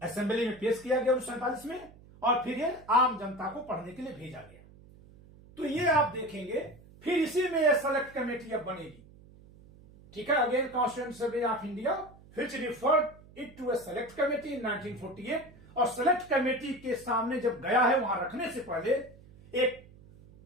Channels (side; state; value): right; noise; hum, 23 dB below the sound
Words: assembly में पेश किया गया 1947 में और फिर ये आम जनता को पढ़ने के लिए भेजा गया। तो ये आप देखेंगे, फिर इसी में ये सेलेक्ट कमेटी अब बनेगी। ठीक है, again constituent assembly of India which referred it to a select committee in 1948। और सेलेक्ट कमेटी के सामने जब गया है, वहां रखने से पहले एक